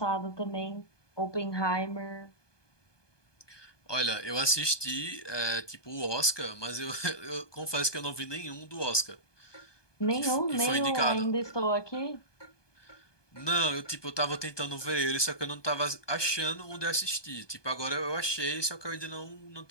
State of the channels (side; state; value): right; late; 1.2 ms